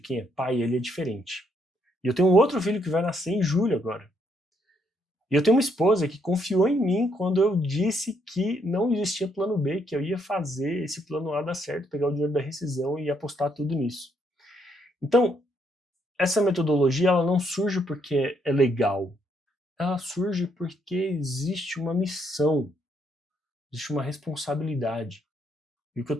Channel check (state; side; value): normal; both; correlation 0.73